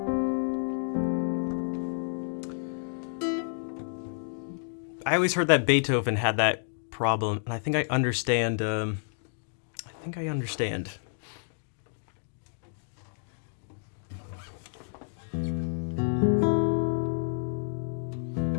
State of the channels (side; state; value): right; silent; digital silence